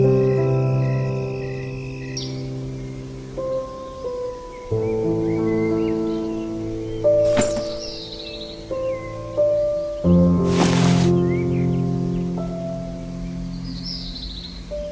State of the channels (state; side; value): identical; both; correlation 1.00